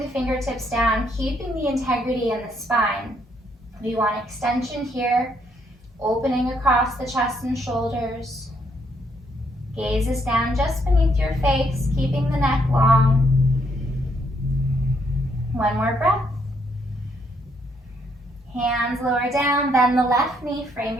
fingertips down, keeping the integrity in the spine. We want extension here, opening across the chest and shoulders. Gaze is down just beneath your face, keeping the neck long. One more breath. Hands lower down, bend the left knee, frame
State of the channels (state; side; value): normal; both; correlation 0.72